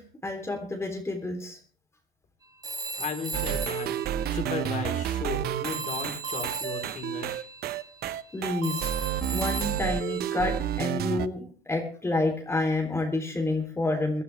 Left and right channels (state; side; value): normal; both; correlation 0.53